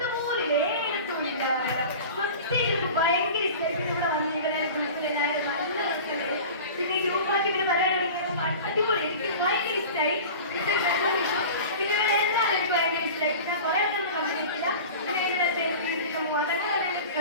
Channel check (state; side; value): inverted; both; correlation -0.36